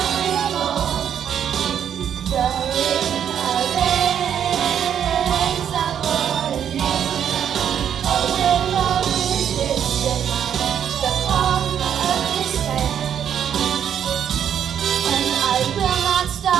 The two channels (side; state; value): left; quieter; 9.0 dB